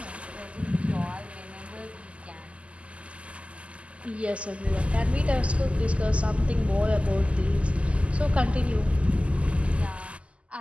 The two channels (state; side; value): late; left; 0.059 ms